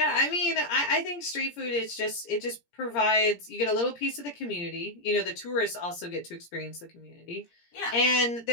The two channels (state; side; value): late; right; 17 ms